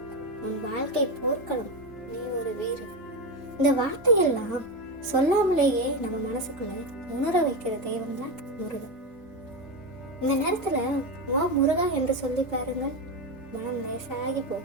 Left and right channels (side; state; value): both; normal; correlation 0.14